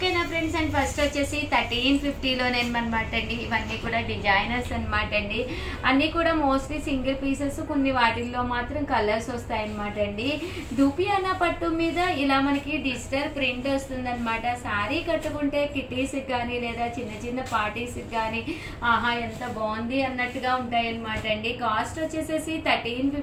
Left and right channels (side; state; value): both; identical; correlation 1.00